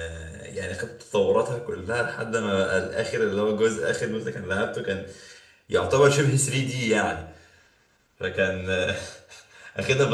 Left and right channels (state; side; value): identical; both; correlation 1.00